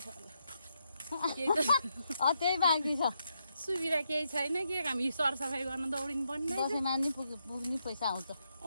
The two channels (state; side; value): inverted; both; correlation -0.81